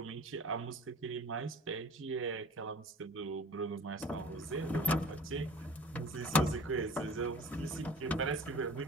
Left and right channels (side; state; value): both; normal; correlation 0.45